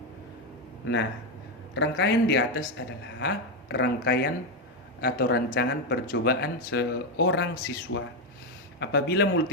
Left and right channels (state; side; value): normal; both; correlation 0.07